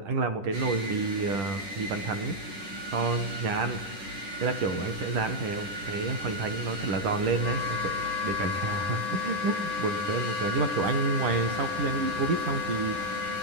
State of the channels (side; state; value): left; late; 10 ms